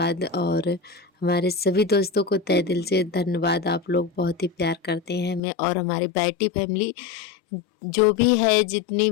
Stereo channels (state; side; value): drops out; right; at 5.4 s